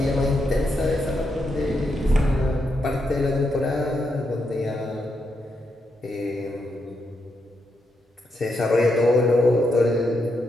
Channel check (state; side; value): normal; both; correlation 0.82